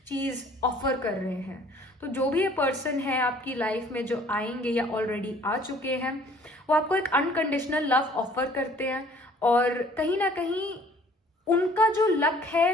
चीज ऑफर कर रहे हैं. तो जो भी ये पर्सन है आपकी लाइफ में जो आएंगे या ऑलरेडी आ चुके हैं, वो आपको एक अनकंडीशनल लव ऑफर करते हैं और कहीं ना कहीं उनका जो लक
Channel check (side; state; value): both; normal; correlation 0.55